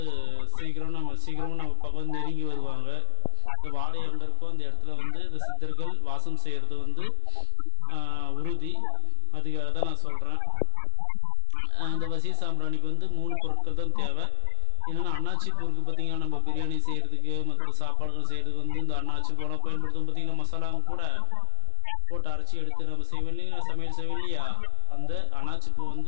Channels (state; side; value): different; both; correlation 0.00